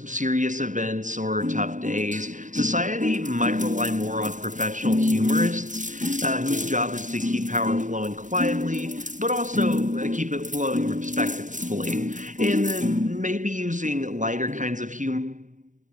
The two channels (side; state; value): left; late; 0.37 ms